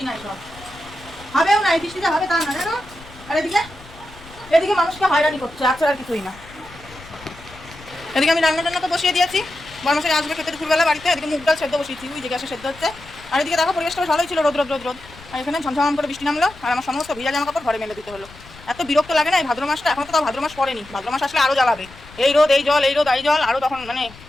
নাই। সব হবেও না, এই বৃষ্টিতে হবে তা না জানো। আর এদিকে মানুষকে হয়রানি করছে, আচ্ছা আর কিছুই না। এদিকে আমি রান্না তো বসিয়ে দিয়েছি, বর্মশাই আসবে খেতে দুপুরবেলা বাড়িতে। এদিকে মুগ ডাল সেদ্ধ বসিয়েছি, ওই যে গ্যাসে সেদ্ধ হচ্ছে। আর এদিকে দেখো পরিবেশটা ভালোই ছিল, রোদ রোদ রোদ রোদ। আর এখানে ঝমঝম করে বৃষ্টি নামলো, আর আমার সমস্ত ভিজা জামা কাপড় ঘরে মেলে দিতে হলো। এত বিরক্ত লাগে না এই ভাদ্র মাসটা। এখন তো তাও ভাদ্র মাস পড়েনি, ভাদ্র মাস আসলে আরও জ্বালাবে। এই রোদ এই জল, এই রোদ এই জল, আরও তখন মানে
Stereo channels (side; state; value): left; noise; rumble, 20 dB below the sound